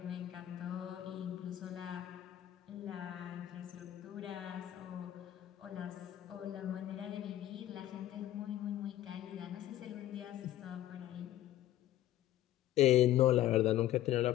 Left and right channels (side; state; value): right; quieter; 13.4 dB